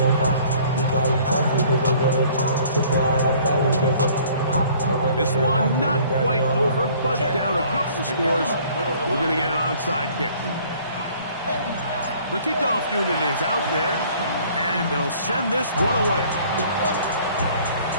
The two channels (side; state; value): both; inverted; correlation -0.55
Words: This one not quite over, but down a couple of scores. We're going to get an onside kick. The kickoff unit is out there, and they'll send this one away.